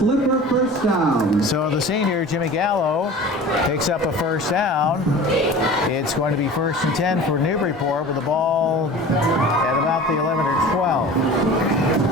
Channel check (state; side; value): normal; both; correlation 0.39